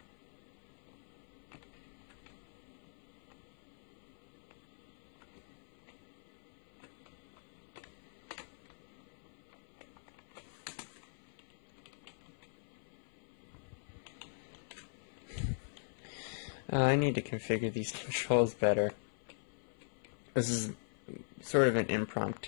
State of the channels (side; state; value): right; silent; 50 dB below the other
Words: I need to configure these controls better. This is sort of an